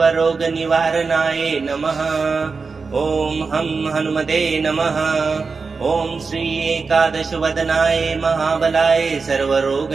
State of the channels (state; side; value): quieter; left; 4.6 dB